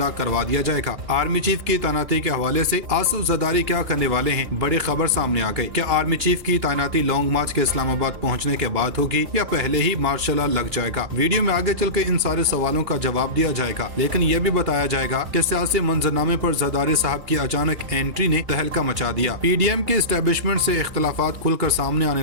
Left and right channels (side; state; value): left; late; 2.9 ms